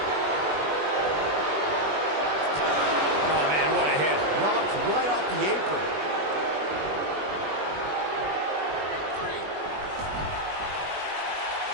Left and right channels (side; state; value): left; late; 20 ms